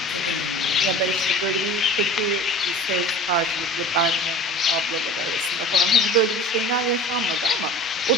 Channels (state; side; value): normal; both; correlation 0.40